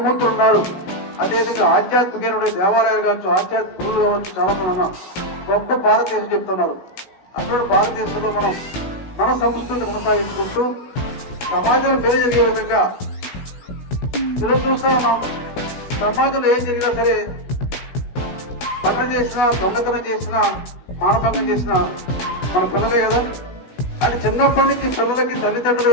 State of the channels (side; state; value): right; late; 16 ms